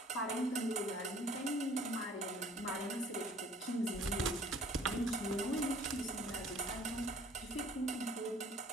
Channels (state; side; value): normal; both; correlation 0.53